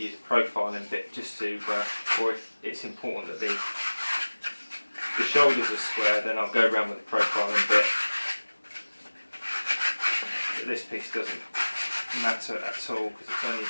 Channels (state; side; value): inverted; both; correlation -1.00